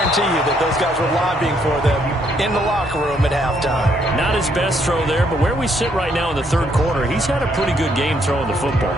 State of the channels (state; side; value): normal; both; correlation 0.71